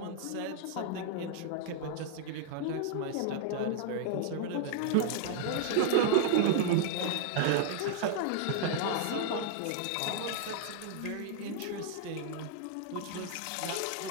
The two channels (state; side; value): different; both; correlation -0.01